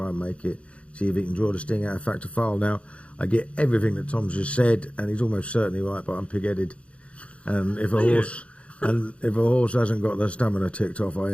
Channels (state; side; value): late; right; 0.061 ms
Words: and make it, see if he can draw the sting out of Factor File. Now, I get everything that Tom's just said, and he's almost certainly right, but I'm pig-headed. And if a horse hasn't got the stamina ticked off, I